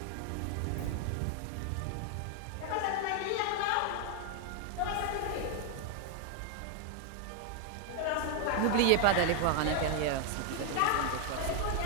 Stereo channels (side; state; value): both; different; correlation 0.01